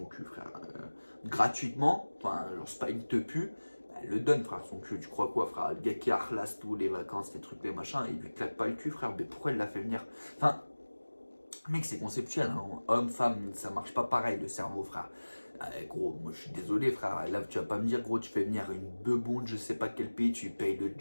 cul, frère, gratuitement, enfin, genre c'est pas une te pue, elle le donne, frère, son cul. Tu crois quoi, frère? Le gars qui harlasse tout, les vacances, les trucs, les machins, il lui claque pas le cul, frère. Mais pourquoi elle l'a fait venir? Enfin, mec, c'est conceptuel, hein. Homme, femme, ça marche pas pareil le cerveau, frère. Gros, moi je suis désolé, frère. Là, tu vas pas me dire, gros, tu fais venir une bebonde, je sais pas quel pays, tu payes le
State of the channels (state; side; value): inverted; both; correlation -1.00